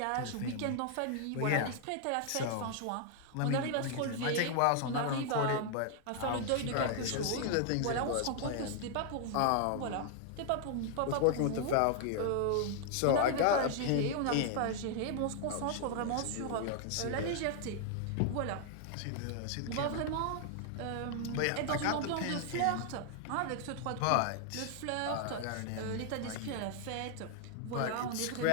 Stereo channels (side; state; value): both; different; correlation 0.00